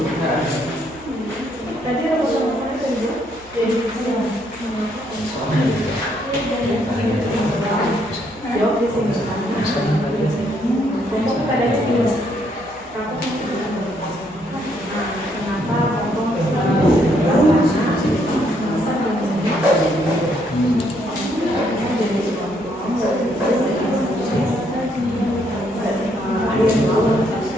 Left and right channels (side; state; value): both; normal; correlation 0.71